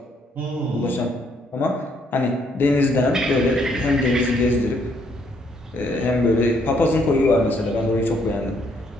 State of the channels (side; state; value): both; normal; correlation 0.70